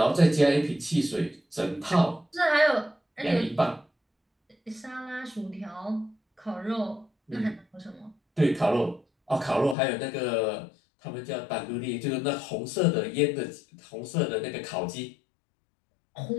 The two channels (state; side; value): drops out; right; at 9.8 s